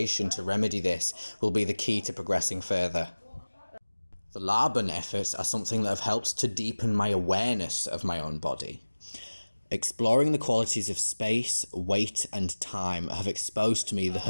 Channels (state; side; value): inverted; both; correlation -1.00